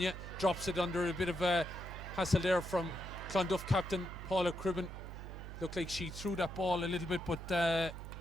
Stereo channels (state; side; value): noise; right; hum, 10 dB below the sound